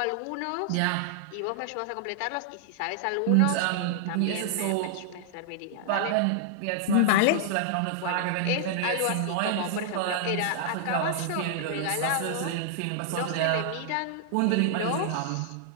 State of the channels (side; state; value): both; different; correlation -0.01